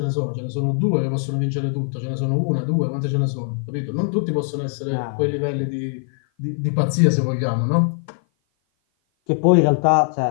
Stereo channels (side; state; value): right; silent; 56 dB below the other